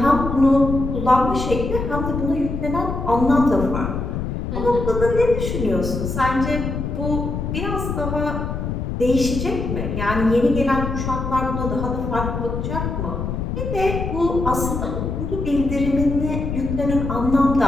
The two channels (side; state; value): left; noise; rumble, 3 dB below the sound